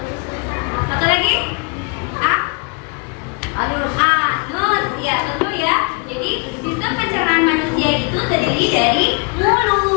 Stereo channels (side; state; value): right; quieter; 34.8 dB